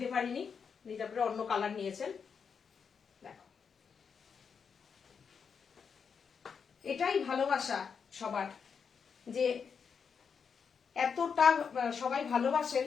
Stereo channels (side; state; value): right; quieter; 6.3 dB